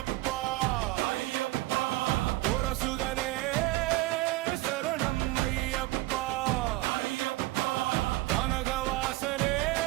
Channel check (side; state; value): left; quieter; 18.8 dB